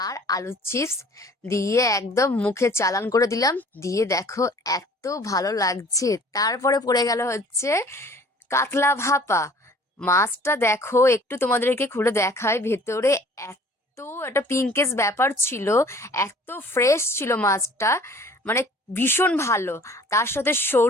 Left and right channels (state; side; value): normal; both; correlation 0.51